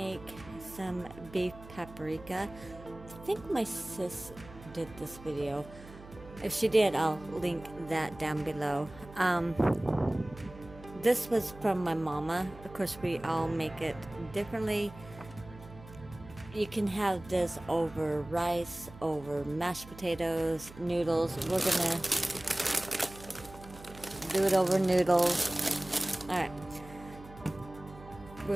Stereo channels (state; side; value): noise; right; hum, 18 dB below the sound